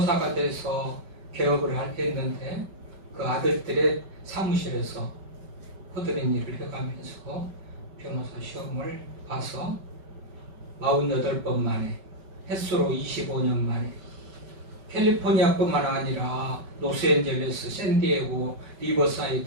돼서 개업을 했는데 그 아들들의 사무실에서 허드렛 일을 해가면서 변호사 시험을 봐서 48번 만에, 횟수로 25년 만에 캘리포니아뿐만 아니라 로스앤젤레스, 샌디에고,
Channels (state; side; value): late; left; 5.3 ms